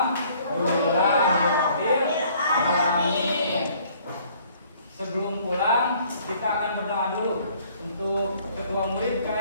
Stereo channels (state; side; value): inverted; both; correlation -0.59